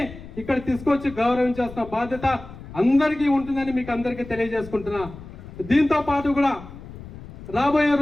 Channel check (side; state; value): left; noise; rumble, 15 dB below the sound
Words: ఇక్కడ తీసుకొచ్చి గౌరవించాల్సిన బాధ్యత అందరికీ ఉంటుందని మీకు అందరికీ తెలియజేసుకుంటున్నా. దీంతో పాటు కూడా రాబోయే